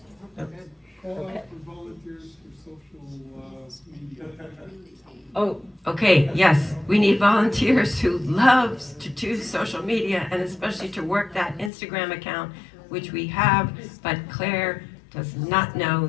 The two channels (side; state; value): right; drops out; at 11.7 s